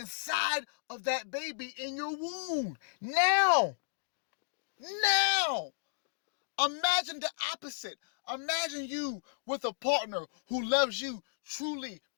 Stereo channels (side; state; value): right; silent; digital silence